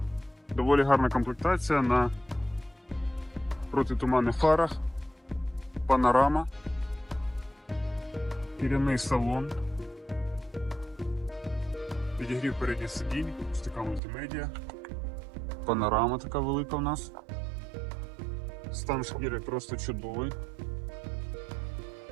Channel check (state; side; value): drops out; left; at 14.0 s